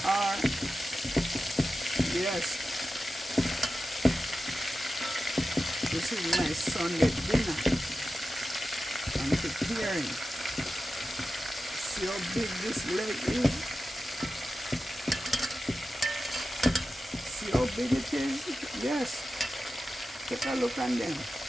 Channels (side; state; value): both; normal; correlation 0.92